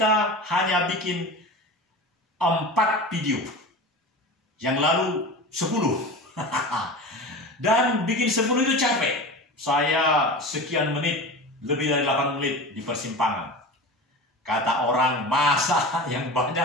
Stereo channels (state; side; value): normal; both; correlation 0.31